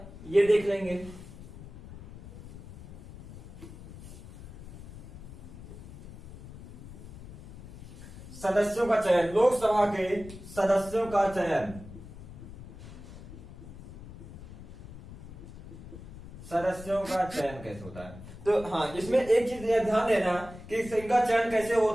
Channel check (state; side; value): noise; left; rumble, 15 dB below the sound